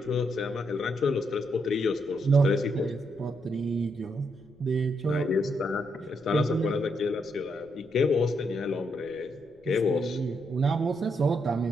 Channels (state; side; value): noise; left; rumble, 30 dB below the sound